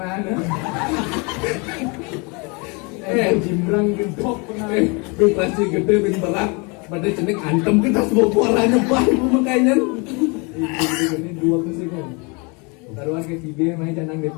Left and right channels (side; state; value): right; quieter; 30.5 dB